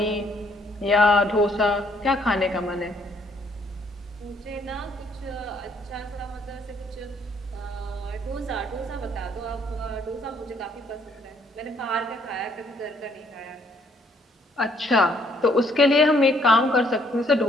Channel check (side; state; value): both; normal; correlation 0.66